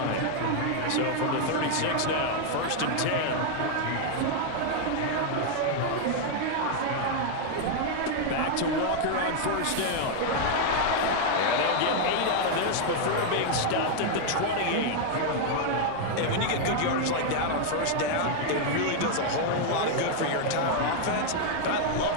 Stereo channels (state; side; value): different; both; correlation 0.00